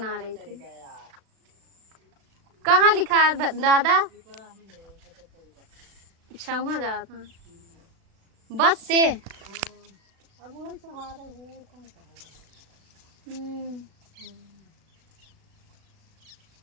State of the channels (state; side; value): late; left; 36 ms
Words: रही थी। कहाँ लिखा है दादा? अच्छा वहाँ जा था बस से। अब वो सहारा है।